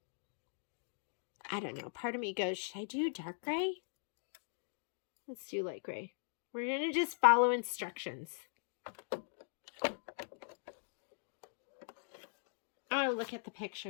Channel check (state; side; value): silent; right; digital silence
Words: I don't know. Part of me goes, should I do dark gray? Let's do light gray. We're going to just follow instructions. Oh, look at the